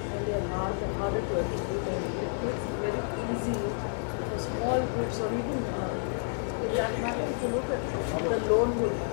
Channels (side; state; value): right; silent; digital silence